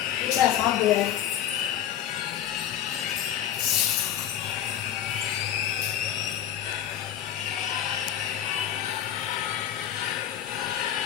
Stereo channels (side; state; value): right; quieter; 10.6 dB